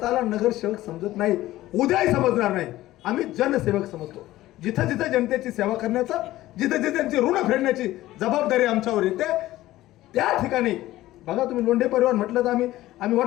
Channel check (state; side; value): quieter; right; 15.9 dB